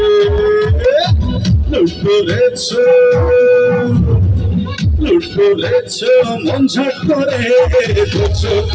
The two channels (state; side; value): identical; both; correlation 1.00